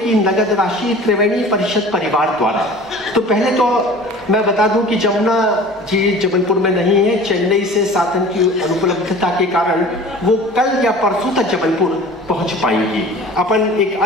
नगद राशि त्रिवेणी परिषद परिवार द्वारा। तो पहले तो मैं बता दूं कि जमुना जी जबलपुर में नहीं है, चेन्नई से साधन की अनुपलब्धता के कारण वो कल या परसों तक जबलपुर पहुंच पाएंगी। अपन एक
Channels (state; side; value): normal; both; correlation 0.42